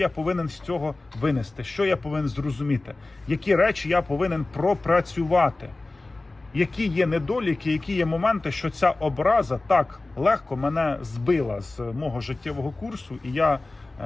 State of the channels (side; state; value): right; quieter; 3.1 dB